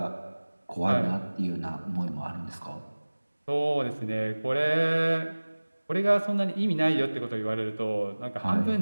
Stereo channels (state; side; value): inverted; both; correlation -1.00